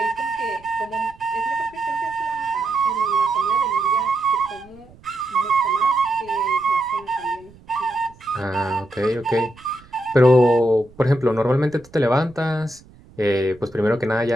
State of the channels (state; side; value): noise; right; rumble, 25 dB below the sound